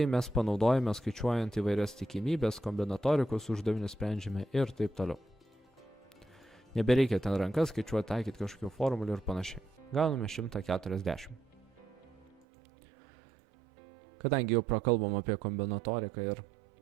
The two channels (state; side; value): drops out; left; at 12.5 s